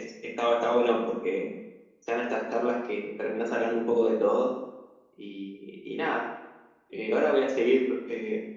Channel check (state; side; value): identical; both; correlation 1.00